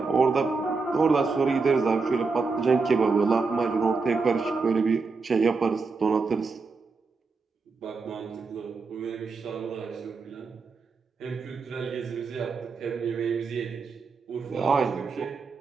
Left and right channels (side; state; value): left; quieter; 4.4 dB